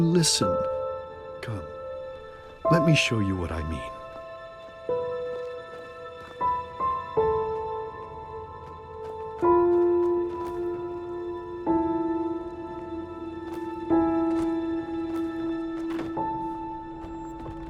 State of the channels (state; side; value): identical; both; correlation 1.00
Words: Come, let me show you what I mean.